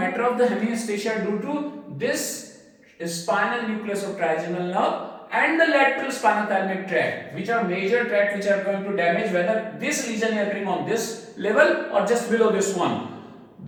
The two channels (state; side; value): identical; both; correlation 1.00